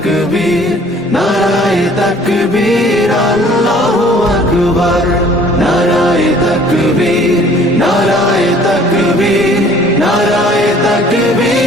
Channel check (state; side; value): normal; both; correlation 0.54